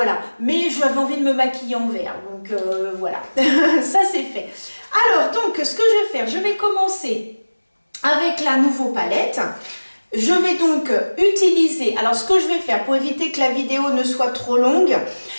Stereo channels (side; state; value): both; inverted; correlation -1.00